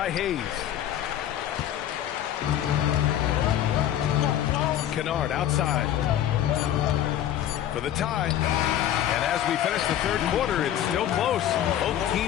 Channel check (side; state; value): right; quieter; 11.3 dB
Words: Hayes. Kennard outside for the tie. And as we finish the third quarter, it's still close. Both